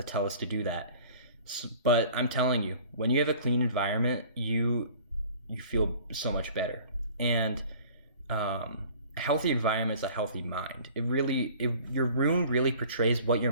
tell us to do that. So, but I'm telling you, when you have a clean environment, you feel so much better. And a healthy environment is a healthy mind. Your room really portrays what your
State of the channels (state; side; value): inverted; both; correlation -0.48